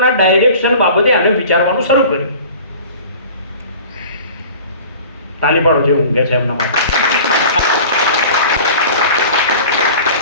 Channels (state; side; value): inverted; both; correlation -0.42